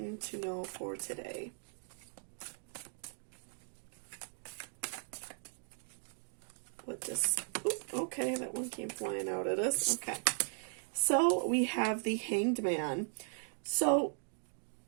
to know for today? Okay, that one came flying out at us. Okay, so we have the Hanged Man. So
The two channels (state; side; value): silent; left; 53 dB below the other